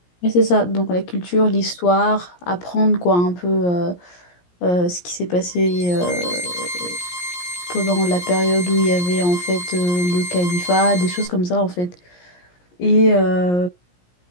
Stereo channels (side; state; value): right; late; 17 ms